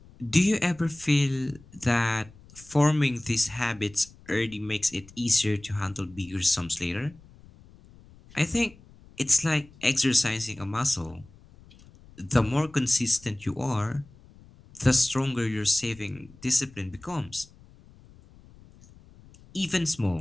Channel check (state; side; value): noise; left; rumble, 24 dB below the sound